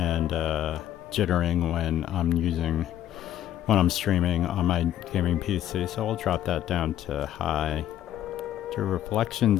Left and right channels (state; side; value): quieter; right; 11.8 dB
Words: jittering when I'm streaming on my gaming PC, so I'll drop that down to high. The